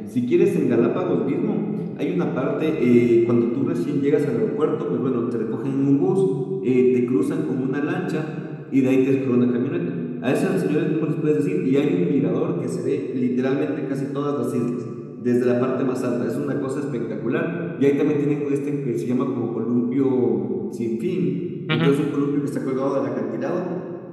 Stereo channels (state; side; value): identical; both; correlation 1.00